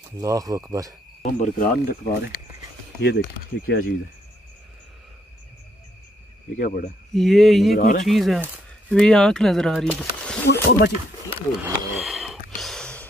अल्लाह अकबर। हम बरकरार नहीं रख पा रहे। ये देखिए ये क्या चीज़ है? ये क्या पड़ा? ये कोई चीज़ है, ये आँख नजर आ रही है। ओ बची,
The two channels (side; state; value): both; normal; correlation 0.72